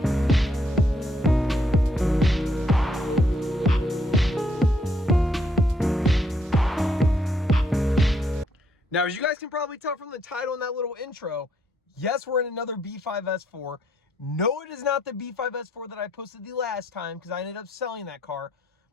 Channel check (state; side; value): normal; both; correlation 0.72